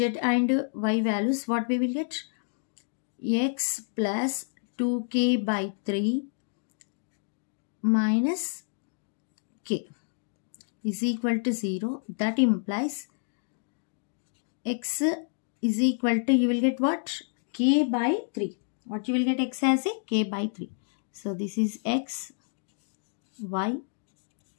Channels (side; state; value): right; silent; digital silence